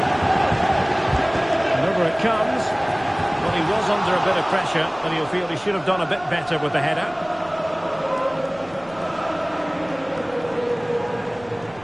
And over it comes. Well, he was under a bit of pressure, and he'll feel he should have done a bit better with the header.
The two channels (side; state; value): right; noise; rumble, 23 dB below the sound